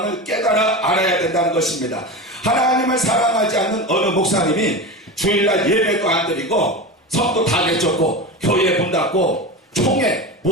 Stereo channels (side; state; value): both; normal; correlation 0.25